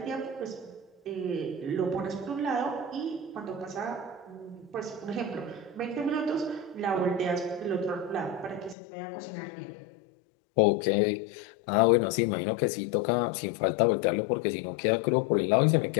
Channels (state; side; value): drops out; right; at 8.8 s